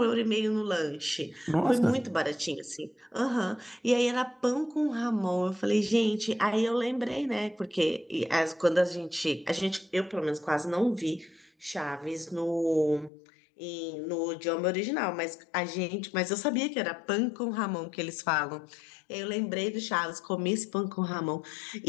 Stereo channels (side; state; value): right; drops out; at 13.1 s